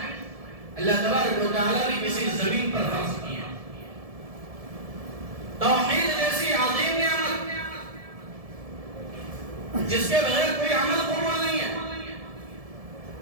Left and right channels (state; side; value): late; left; 1.7 ms